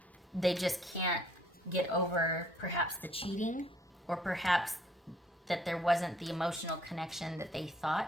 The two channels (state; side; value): normal; both; correlation 0.63